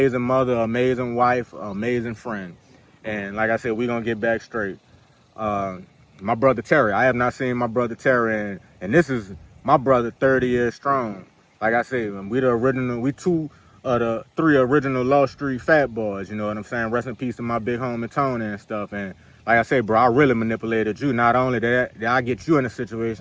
mother, amazing wife, amazing friend. And like I said, we're going to get back straight. My brother Terry, I have not seen my brother Terry, and this is my brother 30 years strong. Like I said, we two of the 3 original Law Street Fat Boys, you know what I'm saying? Rest in peace to my big homie Tony and stuff. And like I said, bro, I really manipulated you. Not only did I get you in a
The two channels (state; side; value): identical; both; correlation 1.00